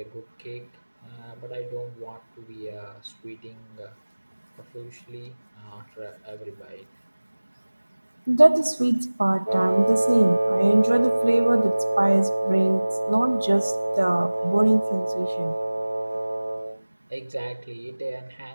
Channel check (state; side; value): inverted; both; correlation -1.00